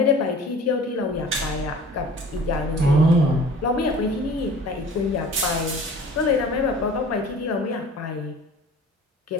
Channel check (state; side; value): normal; both; correlation 0.45